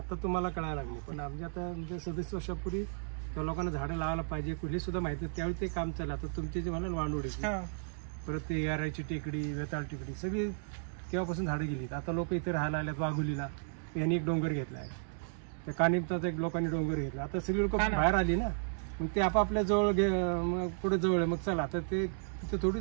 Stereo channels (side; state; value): left; silent; digital silence